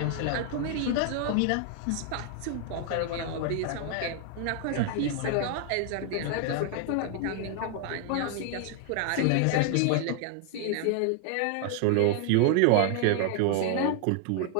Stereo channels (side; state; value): both; different; correlation 0.00